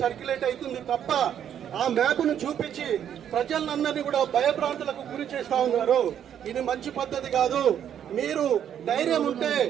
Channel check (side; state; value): left; quieter; 9.5 dB